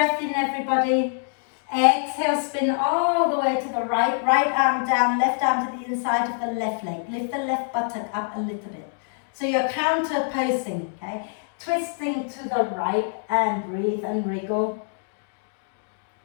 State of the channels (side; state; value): right; silent; digital silence